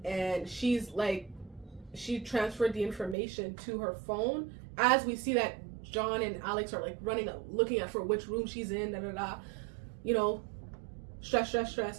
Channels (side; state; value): left; drops out; at 3.2 s